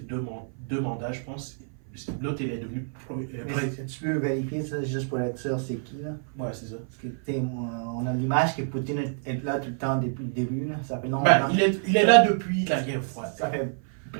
deux mandats, je pense, l'autre, il est devenu Mais président. tu peux vérifier ça juste pour être sûr c'est qui, là? Ouais, c'est ça. Parce que, tu sais, on a l'image que Poutine est là tout le temps depuis le début, là. Ça fait longtemps. Ben, il est là depuis la guerre froide. Ça fait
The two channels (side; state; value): left; silent; 55 dB below the other